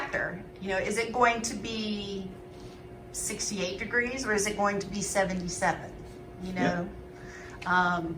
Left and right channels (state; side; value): identical; both; correlation 1.00